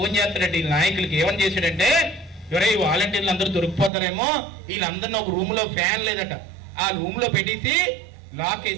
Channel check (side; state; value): left; drops out; at 3.9 s